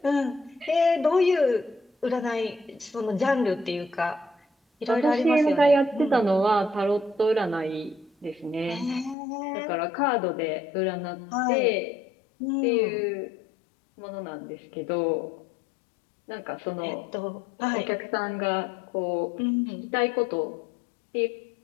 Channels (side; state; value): right; drops out; at 9.2 s